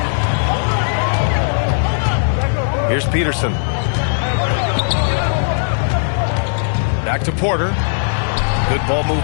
Here's Peterson. Back to Porter. Good ball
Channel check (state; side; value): silent; right; 58 dB below the other